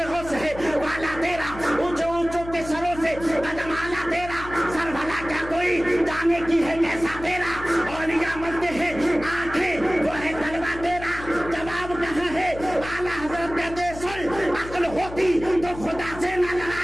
غوث ہے والا تیرا، اونچے اونچوں کے سروں سے قدم اعلیٰ تیرا، سر بھلا کیا کوئی جانے کی ہے کیسا تیرا، اولیاء ملتے ہیں آنکھیں وہ ہے تلوا تیرا۔ جواب کہاں ہے؟ اعلیٰ حضرت کہتے سن عقل ہوتی تو خدا سے نہ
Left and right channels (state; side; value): noise; left; hum, 13 dB below the sound